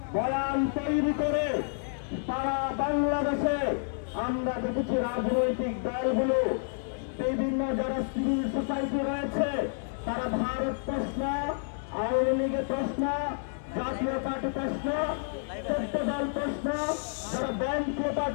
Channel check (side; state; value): right; silent; 58 dB below the other